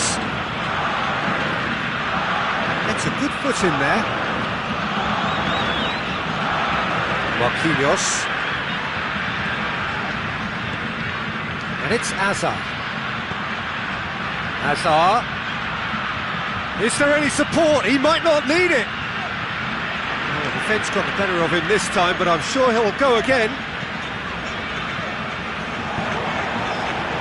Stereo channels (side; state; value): both; identical; correlation 1.00